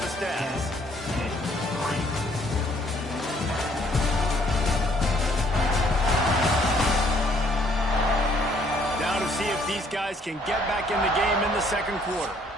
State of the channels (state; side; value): normal; both; correlation 0.64